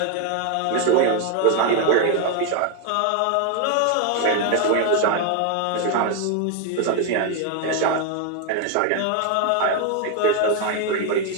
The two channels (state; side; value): different; both; correlation 0.01